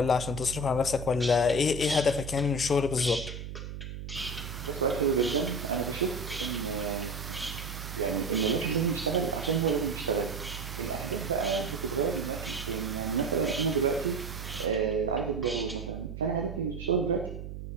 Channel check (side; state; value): right; noise; hum, 8 dB below the sound